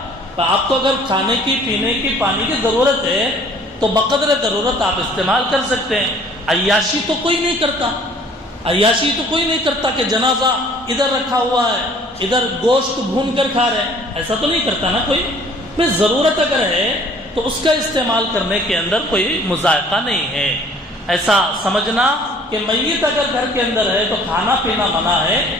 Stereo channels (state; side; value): normal; both; correlation 0.54